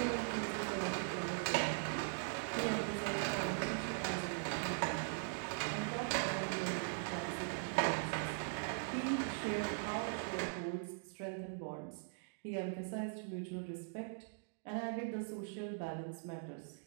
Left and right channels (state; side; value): silent; left; digital silence